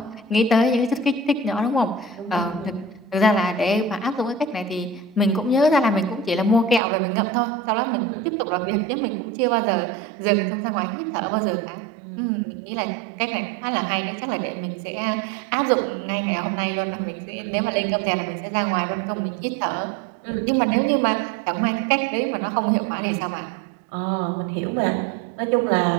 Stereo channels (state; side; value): drops out; left; at 6.8 s